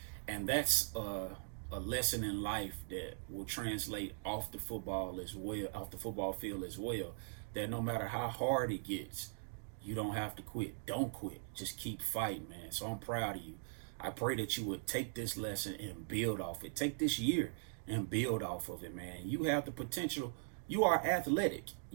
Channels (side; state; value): left; silent; digital silence